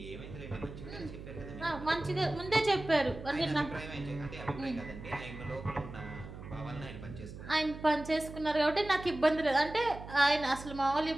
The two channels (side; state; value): right; noise; hum, 12 dB below the sound